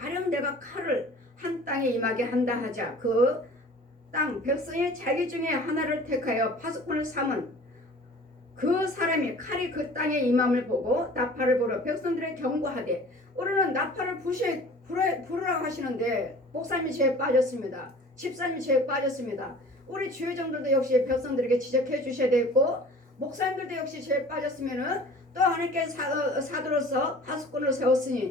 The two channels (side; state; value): both; normal; correlation 0.45